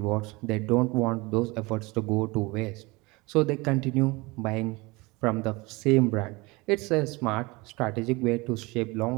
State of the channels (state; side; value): quieter; left; 24.2 dB